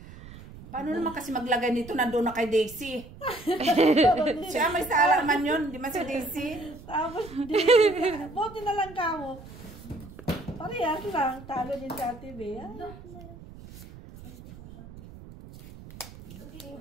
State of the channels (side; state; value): right; noise; rumble, 17 dB below the sound